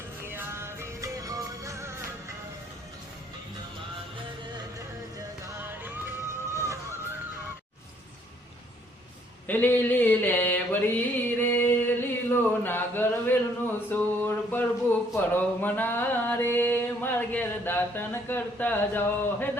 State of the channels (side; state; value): both; normal; correlation 0.65